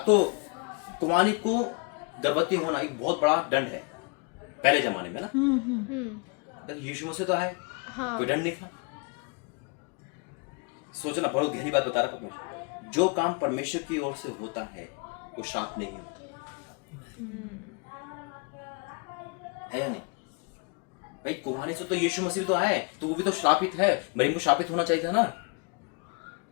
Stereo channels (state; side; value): quieter; right; 32.2 dB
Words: तो कुमारी को गर्भवती होना एक बहुत बड़ा दंड है पहले जमाने में ना। लेकिन यीशु मसीह तो आए, हाँ। कोई दंड नहीं था। सोचना, बहुत गहरी बात बता रहा परमेश्वर। जो काम परमेश्वर की ओर से होता है वो श्राप नहीं होता है या नहीं भाई? कुमारी से तो यीशु मसीह तो आए, तो वो भी तो श्रापित है। मरियम को श्रापित होना चाहिए था ना,